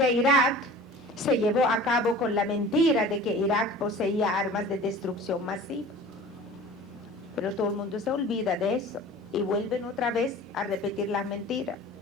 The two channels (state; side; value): normal; both; correlation 0.42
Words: Irak se llevó a cabo con la mentira de que Irak poseía armas de destrucción masiva. Pero todo el mundo se olvida de eso y vuelven otra vez a repetir las mentiras.